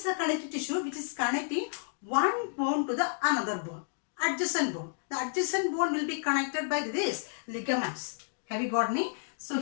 a connective tissue which is connecting one bone to the another bone, adjacent bone. The adjacent bone will be connected by this ligaments. Have you got me? So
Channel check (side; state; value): right; silent; digital silence